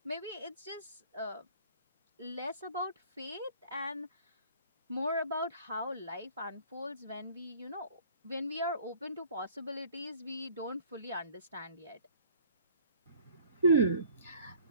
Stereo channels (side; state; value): both; inverted; correlation -0.51